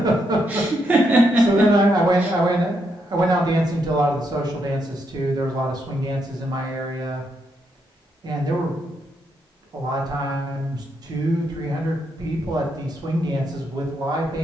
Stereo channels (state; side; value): normal; both; correlation 0.79